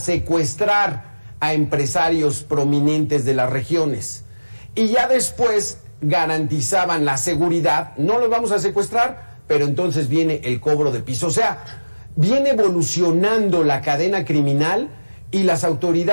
a empresarios prominentes de las regiones. Y ya después garantizaban la seguridad, no los vamos a secuestrar, pero entonces viene el cobro de piso. O sea, viene evolucionando la cadena criminal y las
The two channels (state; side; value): inverted; both; correlation -1.00